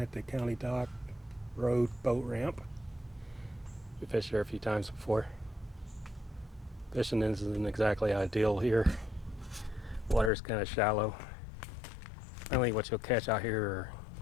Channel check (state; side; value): drops out; right; at 10.3 s